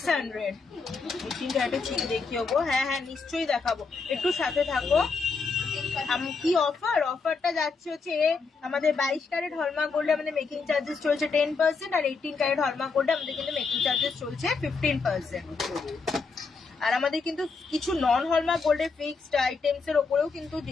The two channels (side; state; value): right; quieter; 4.6 dB